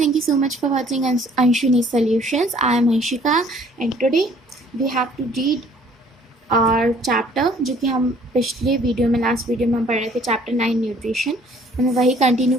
you so much for watching Anshuni Solutions. I am Anshika and today we have to read our chapter जो कि हम पिछले video में last video में हम पढ़ रहे थे चैप्टर 9 न्यूट्रिशन. हमें वही कंटिन्यू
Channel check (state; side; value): normal; both; correlation 0.57